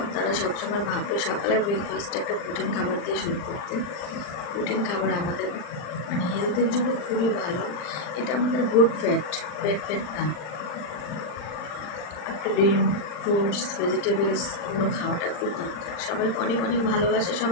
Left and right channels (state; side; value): late; right; 40 ms